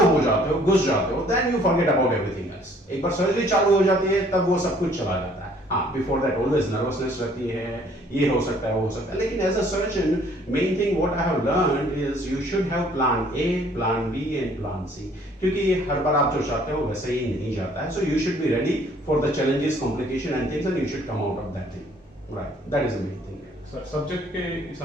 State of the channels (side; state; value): both; normal; correlation 0.59